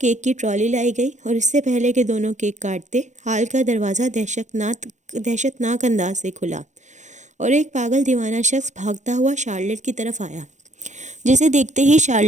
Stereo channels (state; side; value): late; left; 0.34 ms